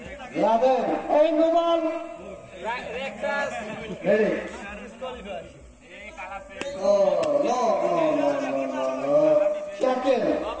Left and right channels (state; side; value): identical; both; correlation 1.00